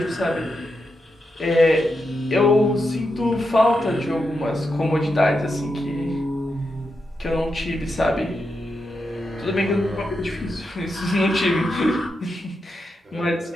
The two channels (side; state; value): both; normal; correlation 0.86